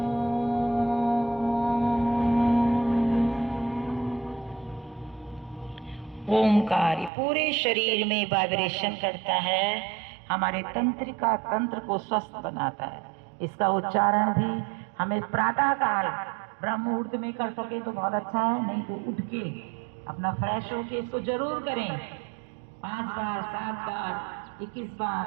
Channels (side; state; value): left; drops out; at 7.1 s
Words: ओमकार पूरे शरीर में वाइब्रेशन करता है, हमारे तंत्रिका तंत्र को स्वस्थ बनाता है। इसका उच्चारण भी हमें प्रातः काल ब्रह्म मुहूर्त में कर सके तो बहुत अच्छा है, नहीं तो उठ के अपना फ्रेश होके इसको जरूर करें। 5 बार, 7 बार, 21 बार,